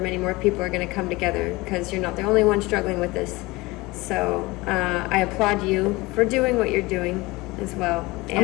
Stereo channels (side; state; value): right; quieter; 22.1 dB